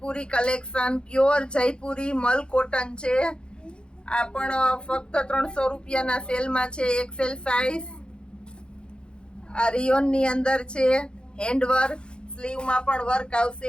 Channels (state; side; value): late; right; 0.051 ms